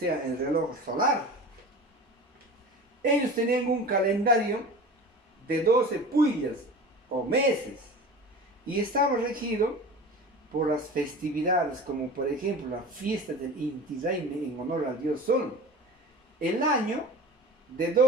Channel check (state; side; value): normal; both; correlation 0.35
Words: el reloj solar. Ellos tenían un calendario de 12 puyas o meses y estaba regido por las festividades, como por ejemplo la fiesta del Inti Raymi en honor al dios Sol. El año de